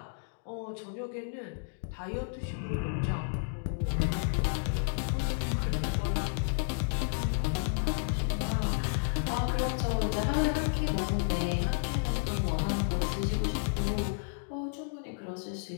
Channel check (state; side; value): silent; right; digital silence